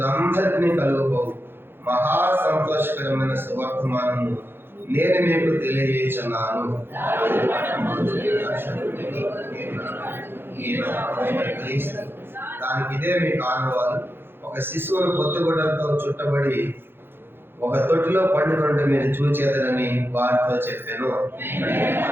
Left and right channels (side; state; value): left; late; 0.10 ms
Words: కలుగుపోవు మహా సంతోషకరమైన సువర్తమానము నేను మీకు తెలియజేస్తున్నాను. దానికి ఇదే మీకు ఆనవాలు. ఒక శిశువును కొత్తగుడ్డలతో చుట్టబడి ఒక తొట్టిలో పండుకుంటే మీరు చూచేదనని వారితో చెప్పాను.